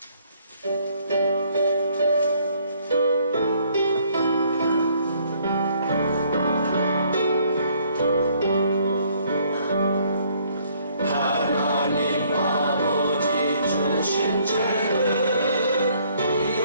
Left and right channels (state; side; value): inverted; both; correlation -0.65